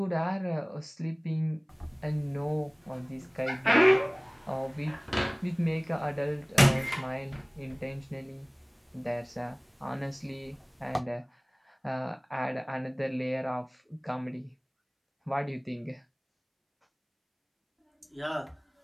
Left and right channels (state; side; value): identical; both; correlation 1.00